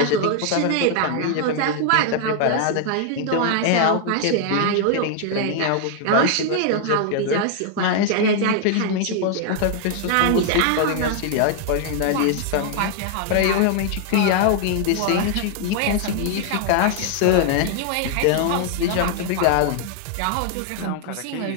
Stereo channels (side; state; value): both; different; correlation 0.00